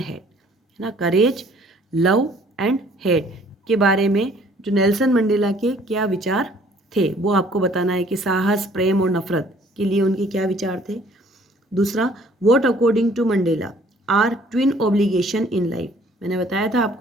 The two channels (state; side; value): normal; both; correlation 0.57